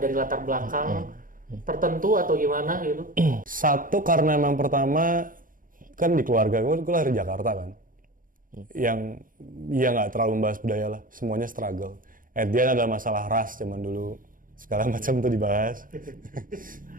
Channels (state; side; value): late; left; 0.40 ms